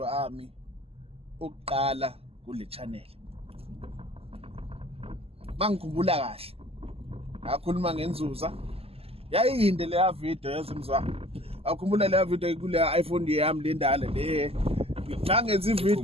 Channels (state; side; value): late; left; 0.29 ms